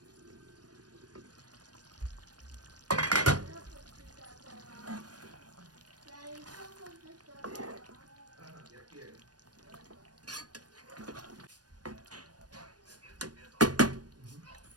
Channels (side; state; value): left; late; 0.69 ms